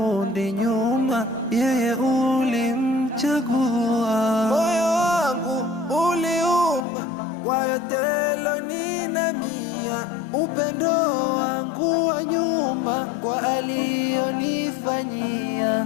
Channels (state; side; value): drops out; right; at 6.9 s